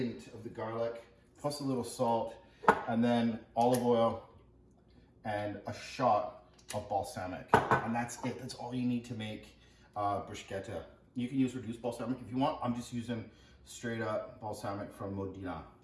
of the garlic, plus a little salt, and then olive oil and a shot of balsamic. And that's it. That's all you need to make bruschetta. You can use reduced balsamic if you want. I'm just using straight up balsamic from Modena.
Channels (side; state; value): both; identical; correlation 1.00